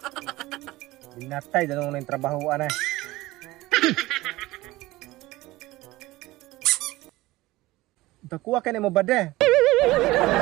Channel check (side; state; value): left; quieter; 18.7 dB